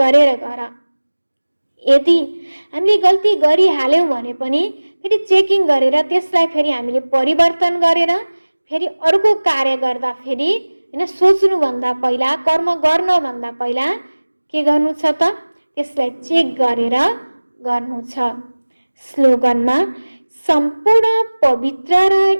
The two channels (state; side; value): inverted; both; correlation -1.00